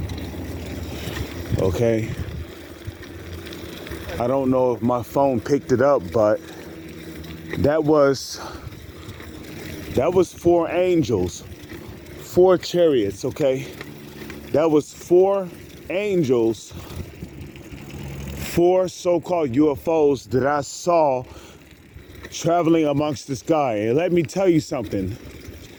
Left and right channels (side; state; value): both; identical; correlation 1.00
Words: Okay. I don't know if my phone picked it up, but that was 4 angels, 4 chariots, okay? That was 4 angels, 4 so-called UFOs that I saw traveling amongst the sky. And let me tell you something.